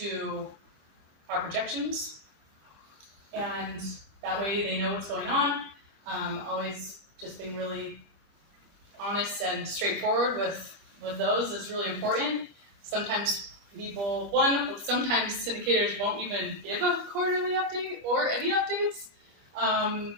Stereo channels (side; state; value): left; late; 25 ms